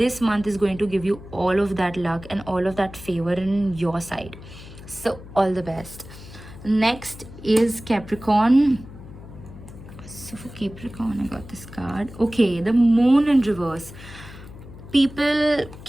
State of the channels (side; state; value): left; noise; hum, 16 dB below the sound